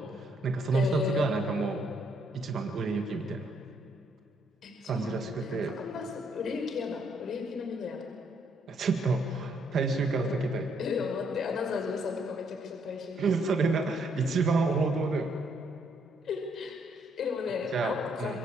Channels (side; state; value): both; normal; correlation 0.71